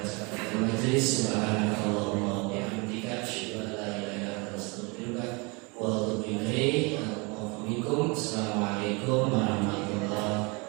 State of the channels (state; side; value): quieter; left; 29.0 dB